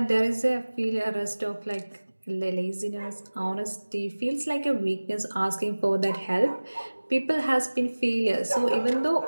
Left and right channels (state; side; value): inverted; both; correlation -1.00